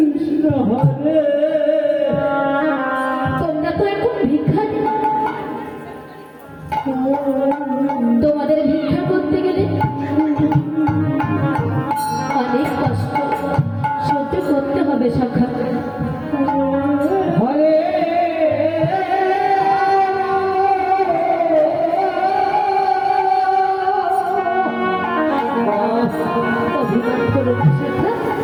কৃষ্ণ হরে তোমরা তো এখন ভিখারি। তোমাদের ভিক্ষা করতে গেলে অনেক কষ্ট সহ্য করতে হবে সখা। হরে অভিমান করো না সখা।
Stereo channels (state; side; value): identical; both; correlation 1.00